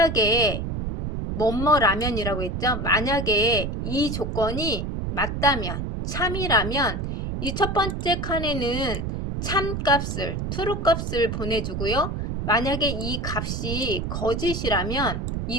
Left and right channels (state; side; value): noise; right; rumble, 3 dB below the sound